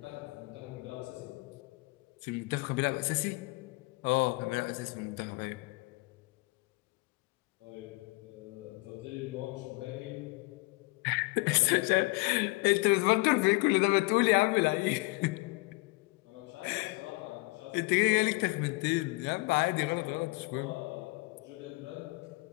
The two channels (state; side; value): quieter; right; 24.8 dB